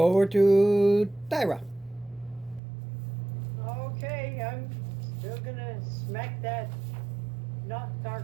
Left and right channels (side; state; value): left; drops out; at 2.6 s